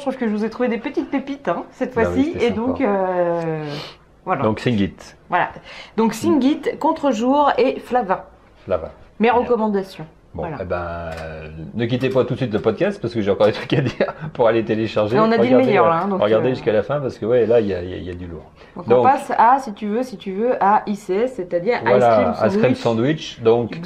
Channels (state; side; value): identical; both; correlation 1.00